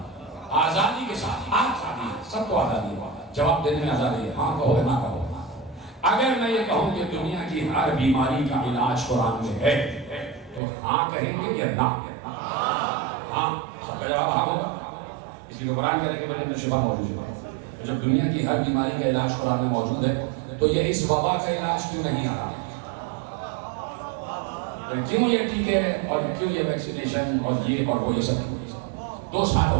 آزادی کے ساتھ آزادی ہے، سب کو آزادی ہے، جواب دینے میں آزادی ہے، ہاں کہو نہ کہو. اگر میں یہ کہوں کہ دنیا کی ہر بیماری کا علاج قرآن میں ہے تو ہاں کہیں گے یا نہ؟ ہاں، سب کا جواب ہاں ہوگا. اس لیے قرآن کہہ رہے کہ میرے اندر شفا موجود ہے. جب دنیا کی ہر بیماری کا علاج قرآن میں موجود ہے تو یہ اس وبا کا علاج کیوں نہیں آ رہا؟ کیوں یہ ٹیکے اور کیوں یہ ویکسینیشن اور یہ اور وہ یہ سب؟ 2 سال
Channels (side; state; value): left; drops out; at 10.6 s